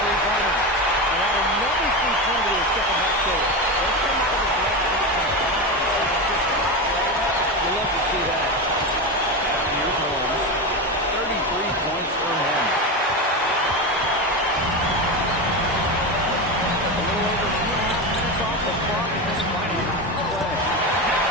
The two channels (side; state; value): both; normal; correlation 0.18